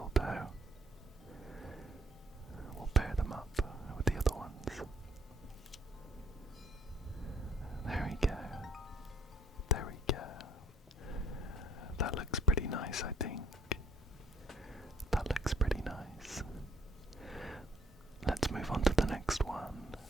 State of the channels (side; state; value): both; normal; correlation 0.64